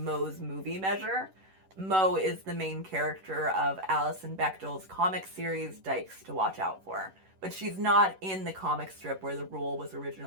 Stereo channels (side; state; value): left; late; 11 ms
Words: movie measure. Moe is the main character of Alison Bechdel's comic series, Dykes to Watch Out For. But she's not in the comic strip where the rule was